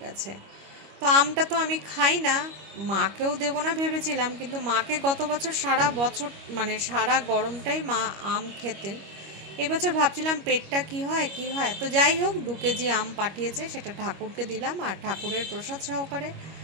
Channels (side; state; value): left; late; 25 ms